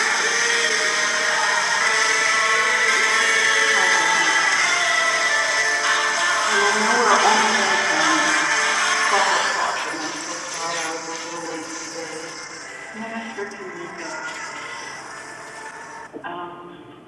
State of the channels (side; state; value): both; identical; correlation 1.00